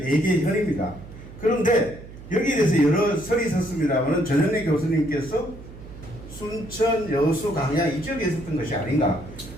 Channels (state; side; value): noise; right; hum, 16 dB below the sound